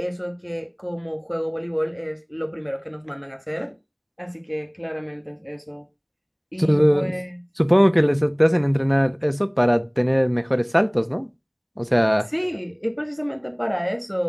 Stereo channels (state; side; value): identical; both; correlation 1.00